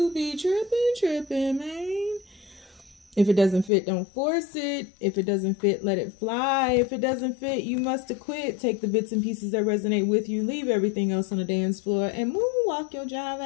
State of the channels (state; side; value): drops out; right; at 3.7 s